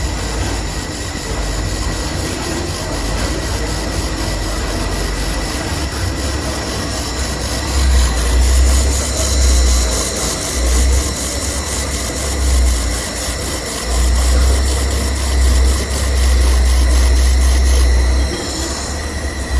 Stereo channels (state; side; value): identical; both; correlation 1.00